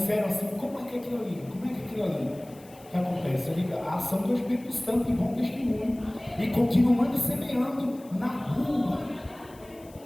assim, como é que é aquilo ali? O que acontece? A ação do Espírito Santo e bom testemunho. E continuando semeando na rua.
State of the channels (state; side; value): noise; left; hiss, 25 dB below the sound